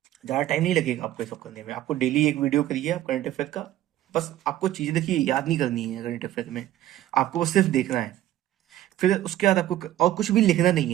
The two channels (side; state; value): left; quieter; 13.6 dB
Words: ज़्यादा टाइम नहीं लगेगा आपको ये सब करने में। आपको डेली एक वीडियो करिए आप करंट अफेयर का। बस आपको चीज़ें देखिए, याद नहीं करनी है करंट अफेयर में, आपको बस सिर्फ देखना है। फिर उसके बाद आपको और कुछ भी लिखना नहीं